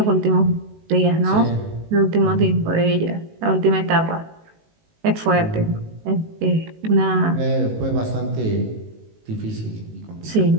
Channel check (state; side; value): late; left; 19 ms